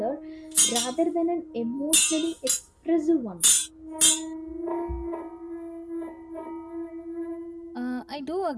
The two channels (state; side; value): identical; both; correlation 1.00